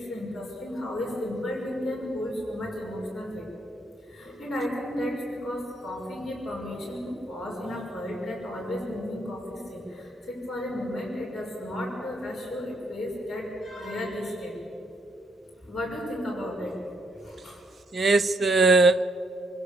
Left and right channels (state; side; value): normal; both; correlation 0.74